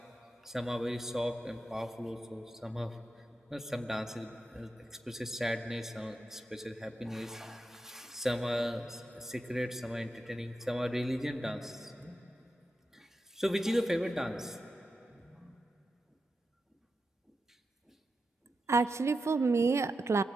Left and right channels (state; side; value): normal; both; correlation 0.89